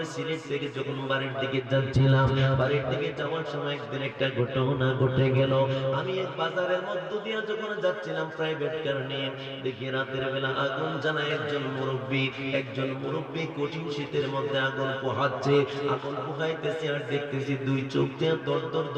সিলেট থেকে যখন বাড়ির দিকে যাচ্ছিলাম, বাড়ির দিকে যাওয়ার সময় একদিন একটা ঘটনা ঘটে গেল। আমি এক বাজারের মধ্য দিয়ে যখন যাচ্ছিলাম প্রাইভেট কার নিয়ে, দেখি রাতের বেলা আগুন জ্বালায় একজন মুরব্বী কঠিন শীতের মধ্যে আগুন পোহাচ্ছে, আগুন পোহাইতেছে আর দেখতেছি দুই চোখ দিয়ে দর দর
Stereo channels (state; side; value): identical; both; correlation 1.00